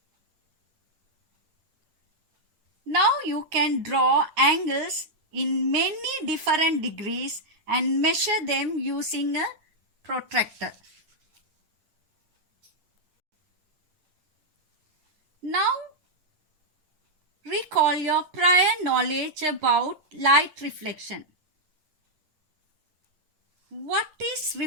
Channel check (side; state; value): left; late; 9.6 ms